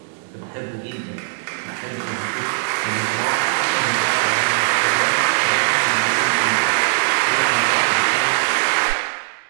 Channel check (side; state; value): left; silent; digital silence